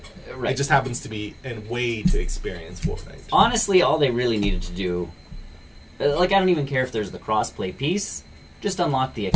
Right. It just happens to be a way to experience Fortnite. Honestly, all they really needed to do, like, I don't even care if there's the crossplay piece. Just unlock the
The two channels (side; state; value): both; identical; correlation 1.00